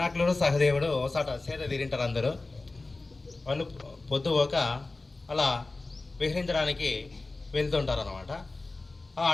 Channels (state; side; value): quieter; right; 3.3 dB